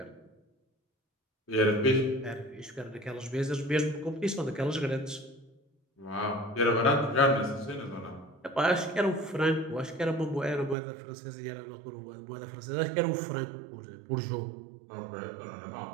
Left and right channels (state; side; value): drops out; left; at 10.8 s